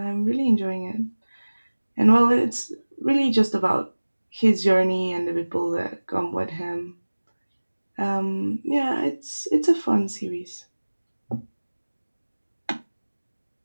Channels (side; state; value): both; inverted; correlation -1.00